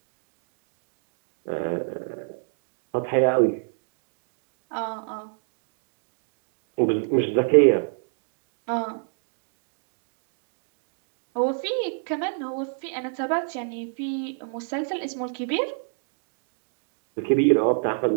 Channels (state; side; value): silent; left; 60 dB below the other